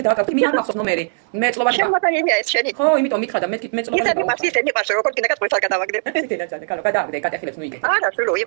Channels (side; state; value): left; silent; digital silence